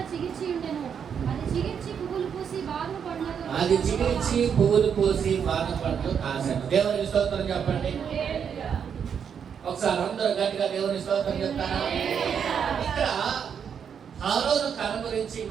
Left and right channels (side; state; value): left; quieter; 7.5 dB